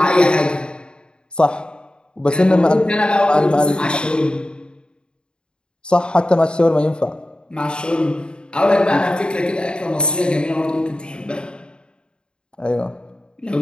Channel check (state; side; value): late; right; 0.051 ms